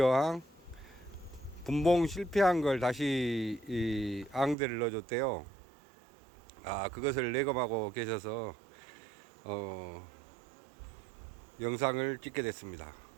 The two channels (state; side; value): drops out; left; at 4.5 s